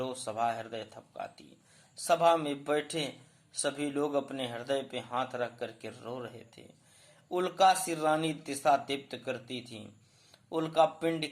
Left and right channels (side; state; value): both; identical; correlation 1.00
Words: सभा हृदय थपकाती। सभा में बैठे सभी लोग अपने हृदय पे हाथ रख करके रो रहे थे। उल्का सी रानी दिशा दीप्त करती थी। उल्का पिंड